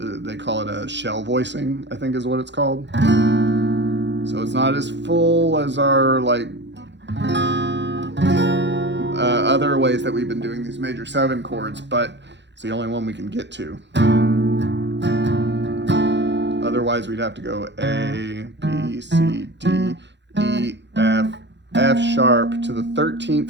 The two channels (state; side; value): late; left; 0.52 ms